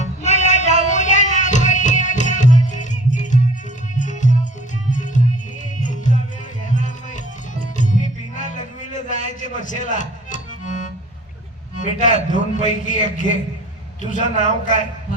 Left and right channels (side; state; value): both; normal; correlation 0.47